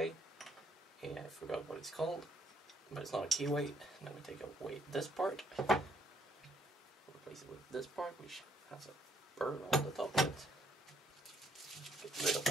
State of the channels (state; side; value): normal; both; correlation 0.68